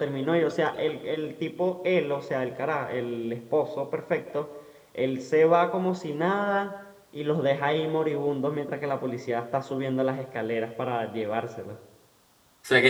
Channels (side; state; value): both; identical; correlation 1.00